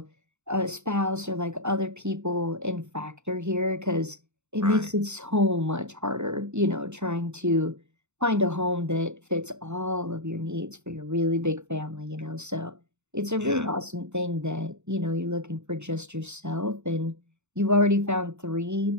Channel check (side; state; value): left; late; 0.83 ms